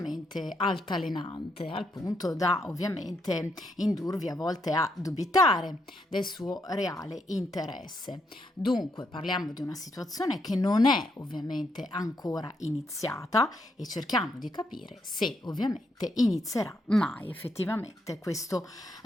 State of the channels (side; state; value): both; normal; correlation 0.78